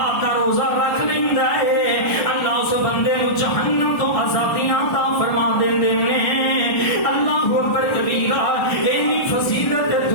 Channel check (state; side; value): late; right; 1.2 ms